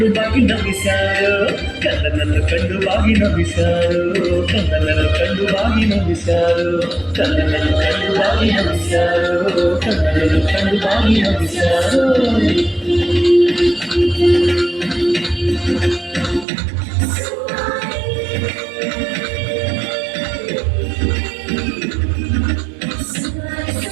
ಬಾಗಿ ನಮಿಸ್ಯಾರೋ ಕಂದನನ್ನು ಕಂಡು ಬಾಗಿ ನಮಿಸ್ಯಾರೋ ಕಂದನನ್ನು ಕಂಡು ಬಾಗಿ ನಮಿಸ್ಯಾರೋ ಕಂದನನ್ನು ಕಂಡು ಬಾಗಿ ನಮಿಸ್ಯಾರೋ ಕಂದನನ್ನು ಕಂಡು ಬಾಗಿ ನಮಿಸ್ಯಾರೋ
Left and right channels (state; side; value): drops out; left; at 16.4 s